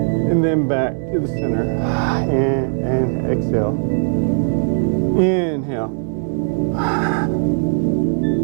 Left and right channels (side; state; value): left; silent; digital silence